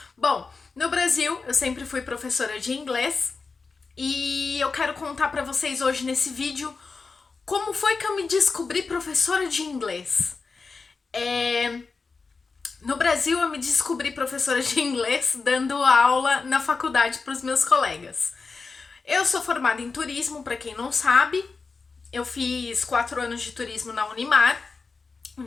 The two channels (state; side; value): quieter; right; 4.5 dB